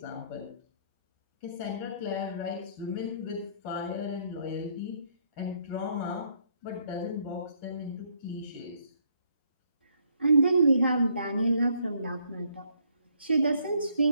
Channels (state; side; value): inverted; both; correlation -0.69